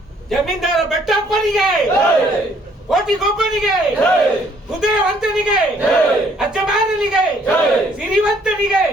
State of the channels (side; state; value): both; normal; correlation 0.63